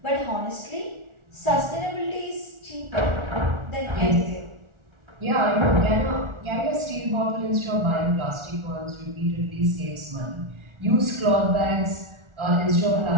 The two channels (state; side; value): late; left; 1.4 ms